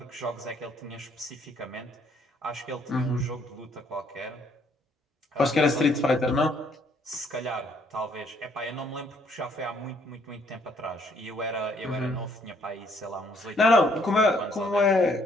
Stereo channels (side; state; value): both; normal; correlation 0.66